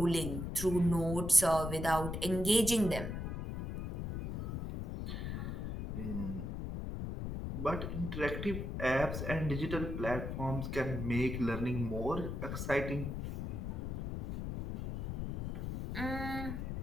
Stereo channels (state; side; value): noise; left; rumble, 4 dB below the sound